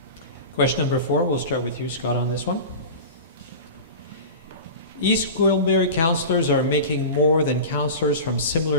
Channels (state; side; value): inverted; both; correlation -0.31